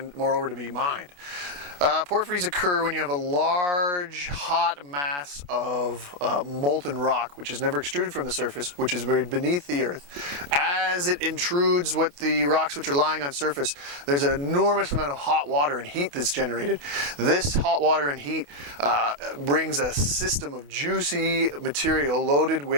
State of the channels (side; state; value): left; late; 28 ms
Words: moreover to be mined. Porphyries occur when you have a large, hot mass of molten rock, which is never extruded from the surface, which is buried beneath the earth. As it intrudes what the rocks which are lying on surface, there's an enormous amount of hot water and heat that's generated. This hot water and heat brings a system of juicy material loaded